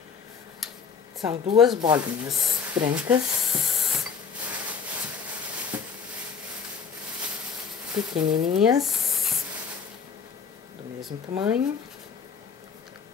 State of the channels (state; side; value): quieter; right; 6.3 dB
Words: São duas bolinhas brancas, pequenininhas, do mesmo tamanho.